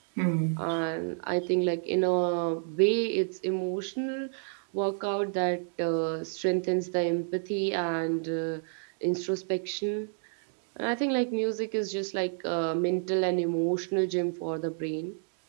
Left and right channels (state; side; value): silent; left; digital silence